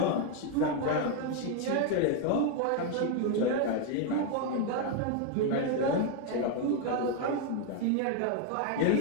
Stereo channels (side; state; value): both; different; correlation 0.01